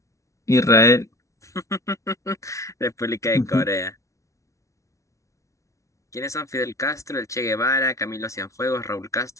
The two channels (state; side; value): late; right; 0.15 ms